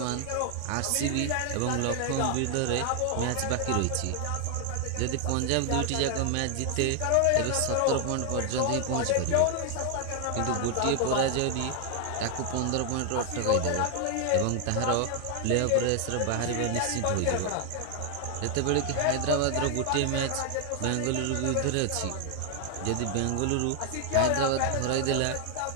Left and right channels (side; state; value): both; different; correlation 0.00